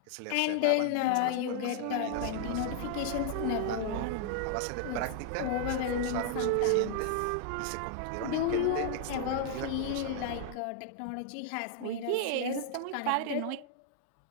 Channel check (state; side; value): different; both; correlation -0.01